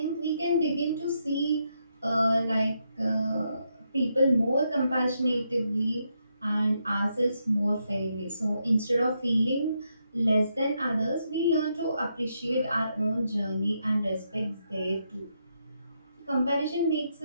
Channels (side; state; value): both; inverted; correlation -0.80